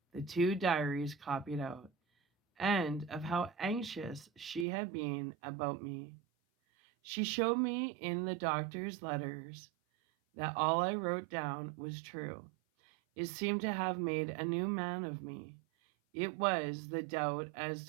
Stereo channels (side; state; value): left; drops out; at 4.7 s